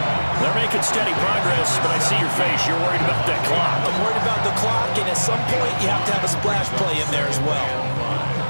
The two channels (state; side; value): inverted; both; correlation -1.00